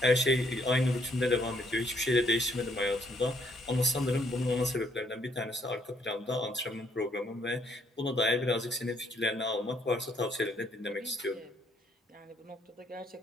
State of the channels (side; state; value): both; normal; correlation 0.69